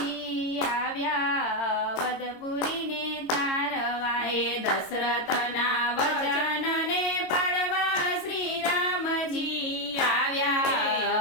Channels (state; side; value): late; right; 22 ms